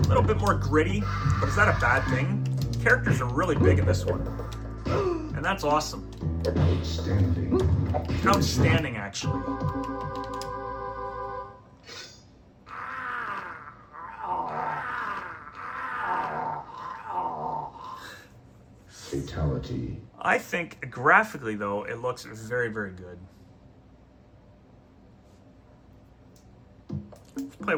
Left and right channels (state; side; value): identical; both; correlation 1.00